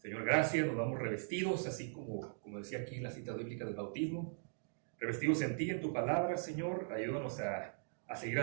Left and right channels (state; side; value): silent; left; digital silence